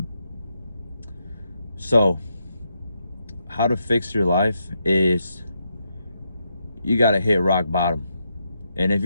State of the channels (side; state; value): both; inverted; correlation -0.81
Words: So how to fix your life is you gotta hit rock bottom. And if